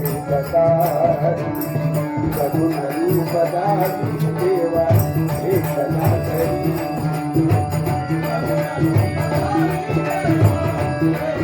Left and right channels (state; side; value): identical; both; correlation 1.00